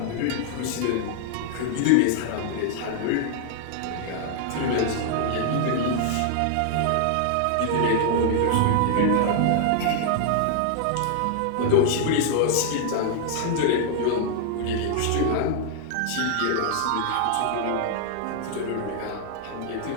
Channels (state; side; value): different; both; correlation 0.00